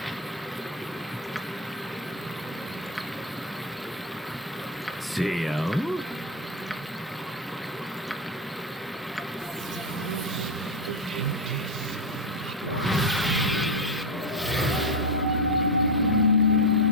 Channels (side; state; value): both; normal; correlation 0.10